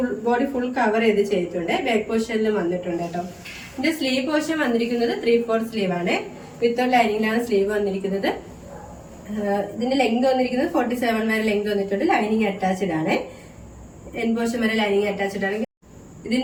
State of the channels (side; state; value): both; identical; correlation 1.00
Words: ബോഡി ഫുൾ കവർ ചെയ്തിട്ടുണ്ട്. ബാക്ക് പോർഷനിലും വന്നിട്ടുണ്ട് കേട്ടോ. ഇതിന്റെ സ്ലീവ് പോർഷൻ വന്നിരിക്കുന്നത് 3/4 സ്ലീവ് ആണ്. വിത്ത് ലൈനിങ്ങിലാണ് സ്ലീവ് വന്നിരിക്കുന്നത്. ഇതിന്റെ ലെങ്ത് വന്നിരിക്കുന്നത് 47 വരെ ലെങ്ത് വന്നിട്ടുണ്ട്. ലൈനിങ് അറ്റാച്ച്ഡ് ആണ്. എൻ പോർഷൻ വരെ ലൈനിങ് അറ്റാച്ച്ഡ് ആണ്.